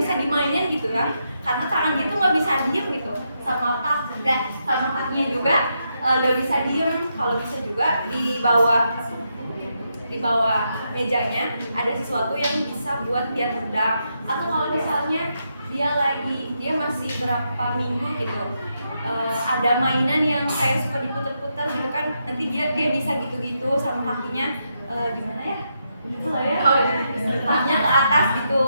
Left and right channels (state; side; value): inverted; both; correlation -0.82